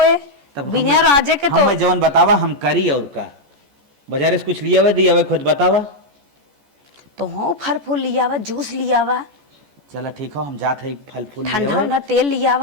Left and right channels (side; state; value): left; late; 14 ms